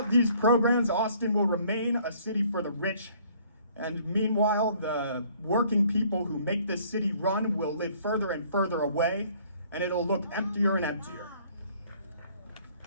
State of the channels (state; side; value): inverted; both; correlation -0.59